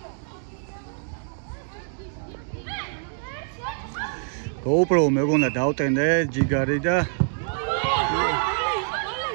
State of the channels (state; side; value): silent; left; 61 dB below the other